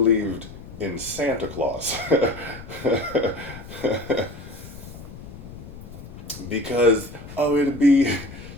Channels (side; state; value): left; noise; rumble, 14 dB below the sound